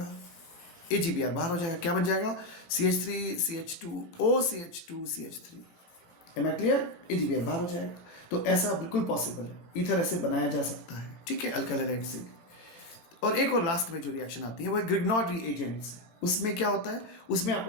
AgBr बाहर हो जाएगा, क्या बन जाएगा, CH3 CH2O CH2 CH3। M I clear? AgBr बाहर हो जाएगा। तो ऐसा बिल्कुल पॉसिबल है, ईथर ऐसे बनाया जा सकता है, ठीक है, अल्काइल हैलाइड से। और एक और लास्ट में जो रिएक्शन आती है वो ग्रिग्नॉड रिएजेंट से। उसमें क्या होता है, उसमें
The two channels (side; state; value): right; late; 18 ms